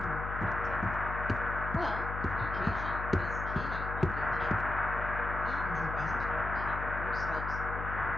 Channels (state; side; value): noise; left; hum, 5 dB below the sound